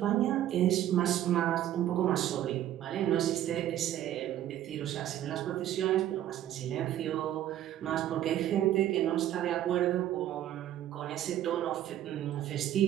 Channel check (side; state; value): left; quieter; 12.2 dB